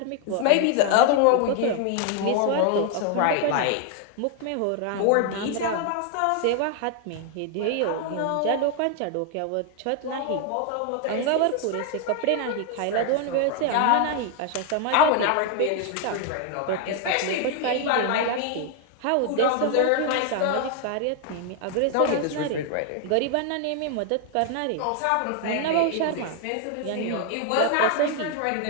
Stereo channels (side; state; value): both; different; correlation 0.00